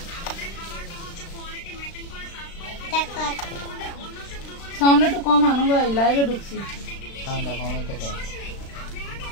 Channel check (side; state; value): right; late; 36 ms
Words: সাউন্ড একটু কম আনো ভাই, লাইভে ঢুকছি।